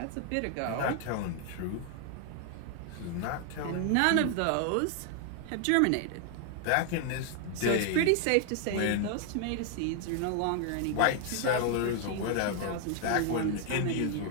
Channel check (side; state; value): both; different; correlation 0.00